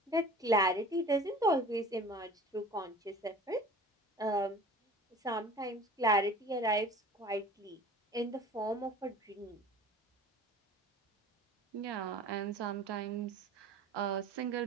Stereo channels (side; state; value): both; normal; correlation 0.42